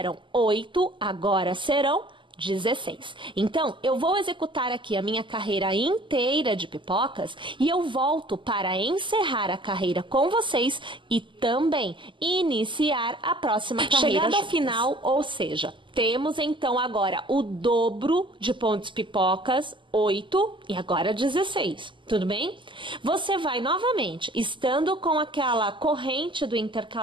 8, agora serão 16. Então, eu vou executar aqui a minha carreira inteira de pipocas e eu volto para encerrar a carreira com vocês e também iniciar a próxima carreira. Chegando ao final, ou seja, temos então agora o dobro de pontos pipocas, 8 e agora 16. Tudo bem? Você vai novamente, estando com aquela corrente do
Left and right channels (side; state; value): left; late; 0.24 ms